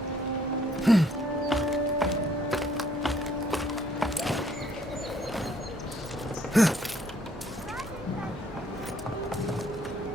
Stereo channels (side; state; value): both; normal; correlation 0.64